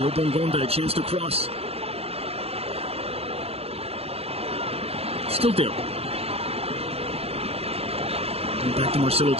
a chance to cross. Still there. And back to Marcelo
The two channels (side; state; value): left; late; 0.29 ms